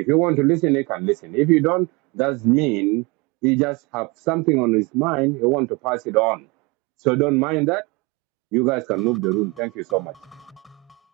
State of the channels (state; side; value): quieter; left; 26.5 dB